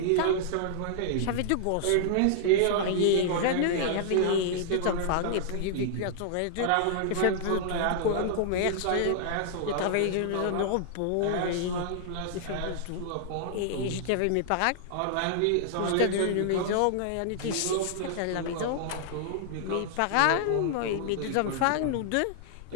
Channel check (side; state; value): both; different; correlation -0.01